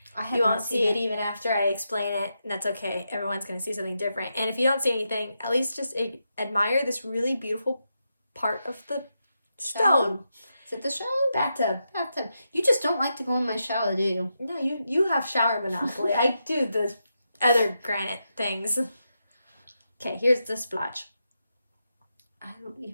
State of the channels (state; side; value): inverted; both; correlation -0.85